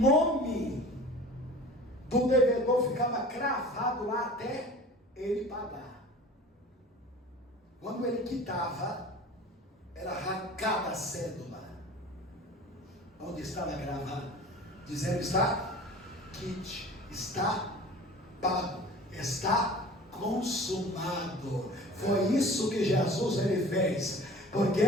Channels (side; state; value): both; normal; correlation 0.42